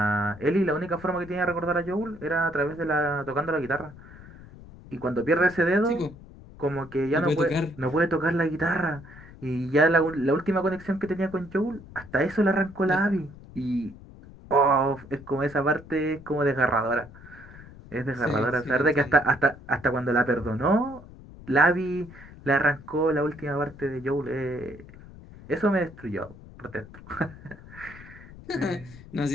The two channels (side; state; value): left; noise; rumble, 18 dB below the sound